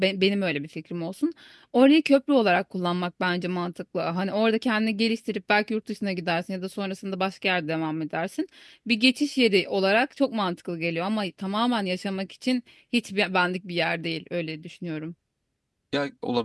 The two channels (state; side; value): identical; both; correlation 1.00